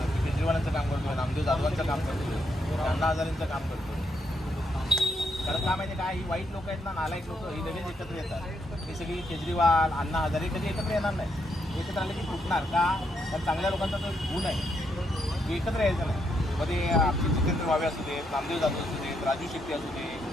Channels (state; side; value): normal; both; correlation 0.78